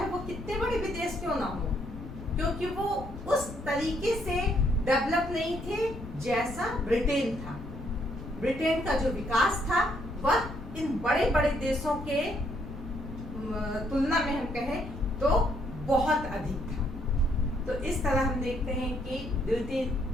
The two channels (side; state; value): left; noise; rumble, 11 dB below the sound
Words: वो कितने बड़े विदेश क्यों ना हो, क्योंकि वो उस तरीके से डेवलप नहीं थे जैसा ब्रिटेन था। ब्रिटेन का जो विकास था वह इन बड़े बड़े देशों के तुलना में हम कहें तो बहुत अधिक था। तो इस तरह हम देखते हैं कि द्वितीय